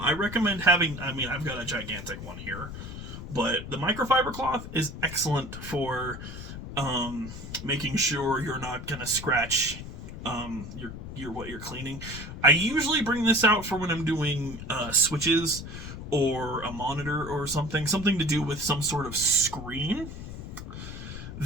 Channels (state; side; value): noise; left; rumble, 10 dB below the sound